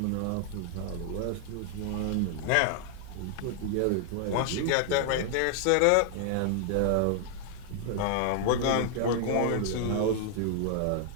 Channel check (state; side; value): different; both; correlation 0.00